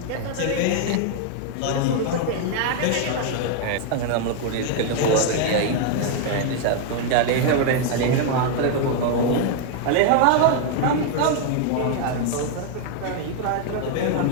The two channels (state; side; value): different; both; correlation 0.00